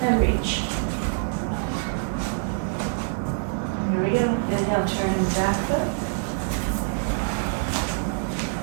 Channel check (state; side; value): silent; left; digital silence